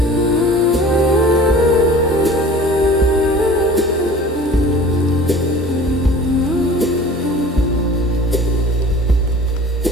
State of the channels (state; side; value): normal; both; correlation 0.44